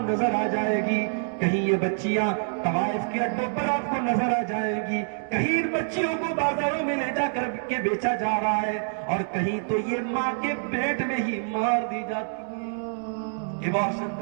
نظر آ جائے گی، کہیں یہ بچیاں طوائف کے اڈوں پر آپ کو نظر آ جائے گی، کہیں ان بچیوں کو بازاروں میں لے جا کر کے بیچا جا رہا ہے، اور کہیں تو یہ ماں کے پیٹ میں ہی مار دی جاتی ہے، ابارشن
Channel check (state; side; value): silent; left; digital silence